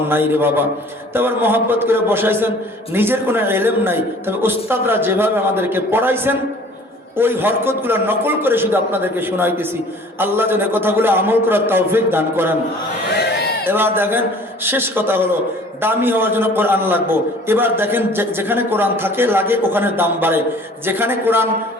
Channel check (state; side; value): normal; both; correlation 0.50